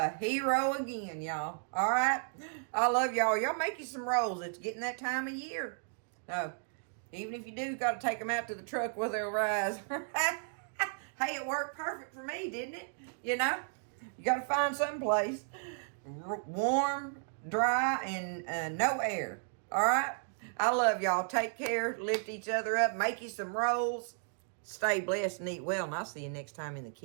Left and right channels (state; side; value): silent; left; digital silence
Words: hero again, y'all. All right? I love y'all. Y'all make you some rolls. It's getting that time of year. So, even if you do, got to take them out to the truck where they'll rise. Hey, it worked perfect for me, didn't it? You know? You got to find some place warm, dry, and no air. All right? I love y'all. Take care. Lift each other up. Make you some rolls. Stay blessed and eat well. And I'll see you next time in the